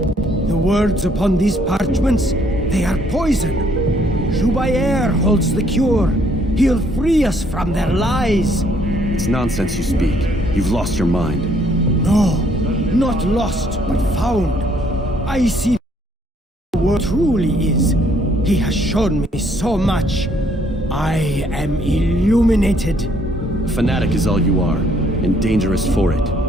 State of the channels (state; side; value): normal; both; correlation 0.66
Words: The words upon these parchments, they are poison. Jubayer holds the cure. He'll free us from their lies. It's nonsense you speak. You've lost your mind. No, not lost, but found. I see the world truly is. He has shown me so much. I am illuminated. A fanatic is all you are, and dangerous for it.